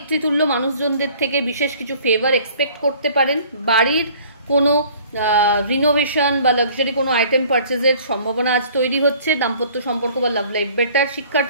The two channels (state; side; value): inverted; both; correlation -0.52